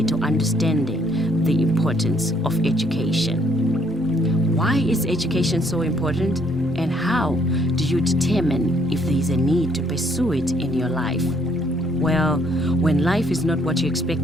to understanding the importance of education. Why is education so important? And how do you determine if there is a need to pursue it in your life? Well, when life is not what you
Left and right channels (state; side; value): normal; both; correlation 0.67